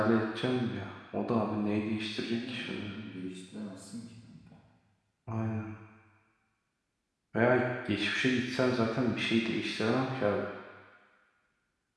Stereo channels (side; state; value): both; identical; correlation 1.00